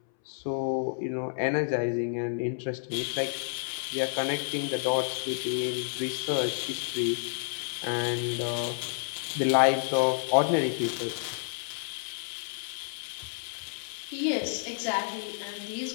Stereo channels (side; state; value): right; silent; 58 dB below the other